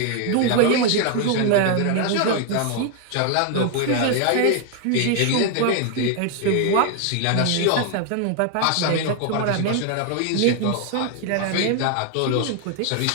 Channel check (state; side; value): different; both; correlation 0.00